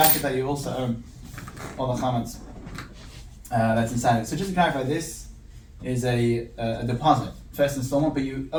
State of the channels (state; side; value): identical; both; correlation 1.00